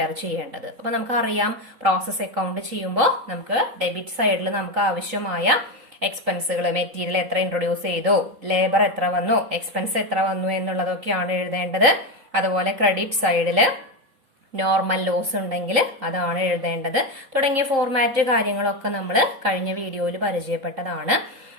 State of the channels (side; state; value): left; late; 3.8 ms